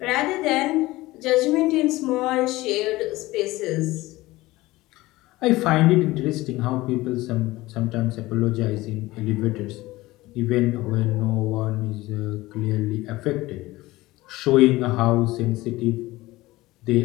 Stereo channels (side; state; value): right; quieter; 18.9 dB